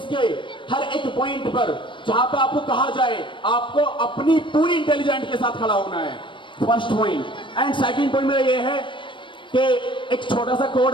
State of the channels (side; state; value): right; late; 0.24 ms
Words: के हर एक पॉइंट पर जहां पे आपको कहा जाए आपको अपनी पूरी इंटेलिजेंट के साथ खड़ा होना है, first point. And second point मेरा ये है कि एक छोटा सा कोड